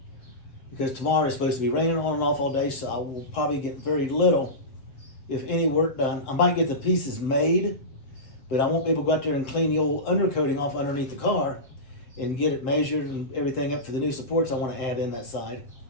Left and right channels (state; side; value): late; right; 7.8 ms